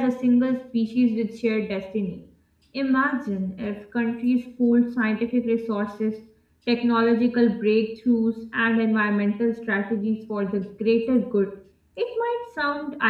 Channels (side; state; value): both; identical; correlation 1.00